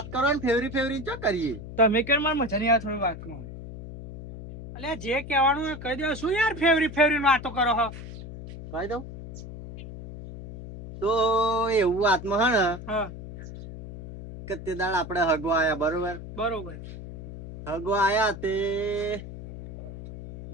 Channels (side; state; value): left; noise; hum, 11 dB below the sound